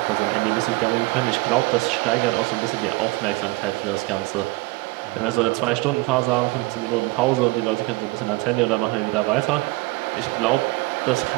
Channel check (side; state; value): left; quieter; 23.4 dB